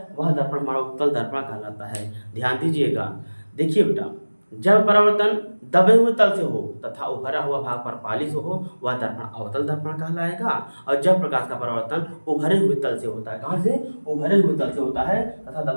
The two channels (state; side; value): inverted; both; correlation -1.00